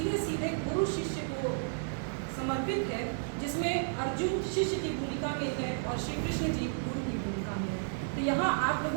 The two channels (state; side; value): silent; left; digital silence